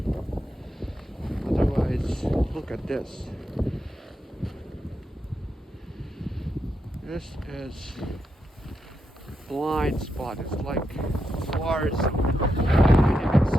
Otherwise, look at this. This is blind spot. It's like forest. You can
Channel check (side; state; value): both; normal; correlation 0.84